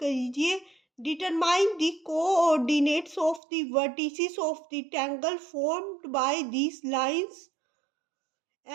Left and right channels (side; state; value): left; drops out; at 3.4 s